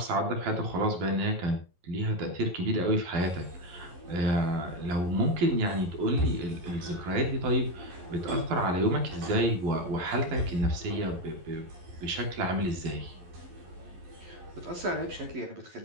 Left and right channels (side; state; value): left; late; 11 ms